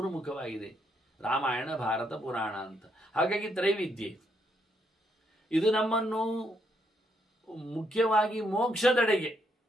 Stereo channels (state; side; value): normal; both; correlation 0.75